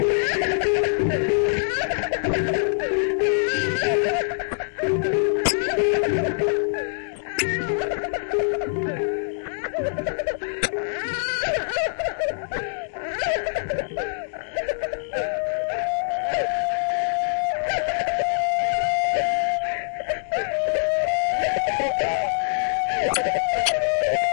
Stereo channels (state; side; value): silent; right; digital silence